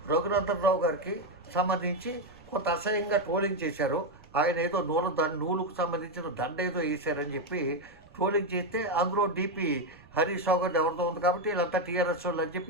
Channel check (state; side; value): noise; right; rumble, 25 dB below the sound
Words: రఘునందన్ రావు గారికి సంబంధించి కొంత అసహ్యంగా ట్రోలింగ్ చేశారు. ఆయన ఏదో నూలుకు సంబంధించిన దండ ఏదో వేశారని చెప్పి ట్రోలింగ్ చేస్తే అందులో డీపీ హరీష్ రావు గారు ఎవరితో ఉంది కాబట్టి వీళ్ళంతా టీఆర్ఎస్ వాళ్ళు అని